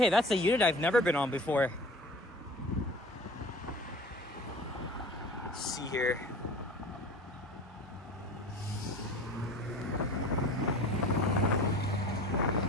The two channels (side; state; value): both; normal; correlation 0.40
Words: that's a unit I've never been on before. Let's see here.